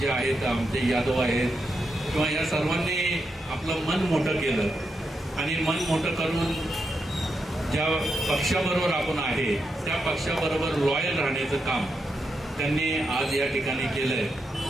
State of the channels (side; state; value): both; normal; correlation 0.84